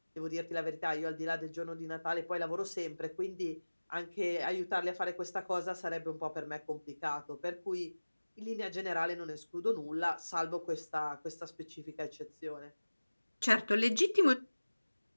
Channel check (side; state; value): both; inverted; correlation -1.00